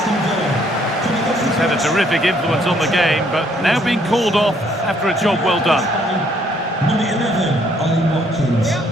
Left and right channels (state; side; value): normal; both; correlation 0.66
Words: He's had a terrific influence on the game, but now being called off after a job well done. Number 11, Ollie Watkins.